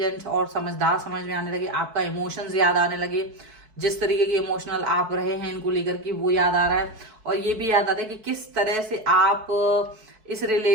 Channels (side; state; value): left; late; 4.6 ms